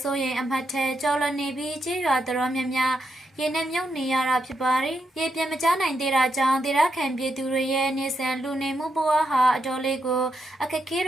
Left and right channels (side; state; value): both; normal; correlation 0.82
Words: စိုးရိမ်အမှတ်ထဲကျော်လွန်နေပြီးကြေးရွာတော်များများရေနဲ့မြုပ်နေရတာဖြစ်ပါတယ်။ရေပြင်းမကျနိုင်သေးတာကြောင့်ဒေသခံပြည်သူတွေရဲ့နေဆန်လူနေမှုဘဝဟာအတော်လေးကိုအခက်အခဲ